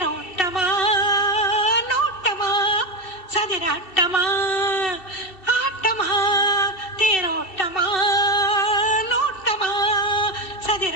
நோட்டமா சதிராட்டமா ஆட்டமா தேரோட்டமா நோட்டமா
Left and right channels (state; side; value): late; right; 2.7 ms